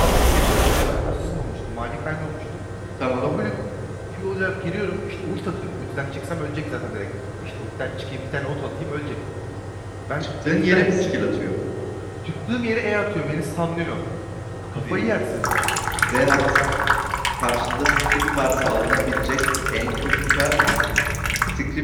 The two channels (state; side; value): identical; both; correlation 1.00